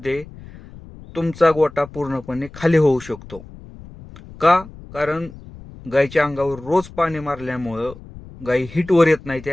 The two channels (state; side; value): noise; left; rumble, 18 dB below the sound